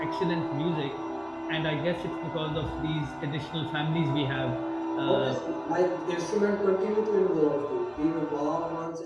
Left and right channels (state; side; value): identical; both; correlation 1.00